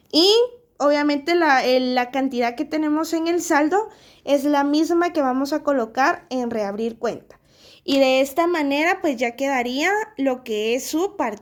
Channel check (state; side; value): identical; both; correlation 1.00